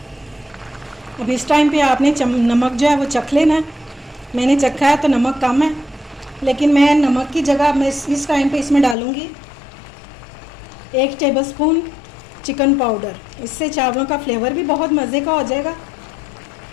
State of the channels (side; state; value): right; drops out; at 9.0 s